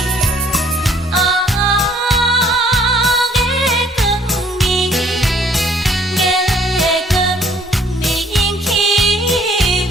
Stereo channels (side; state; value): both; normal; correlation 0.61